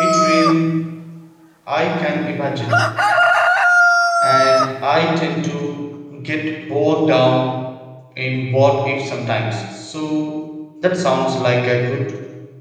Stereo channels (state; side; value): identical; both; correlation 1.00